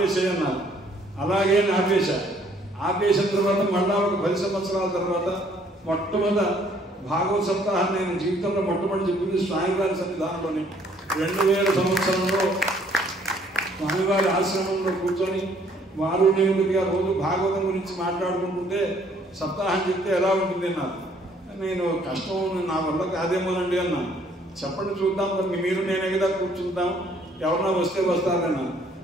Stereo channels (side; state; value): both; normal; correlation 0.62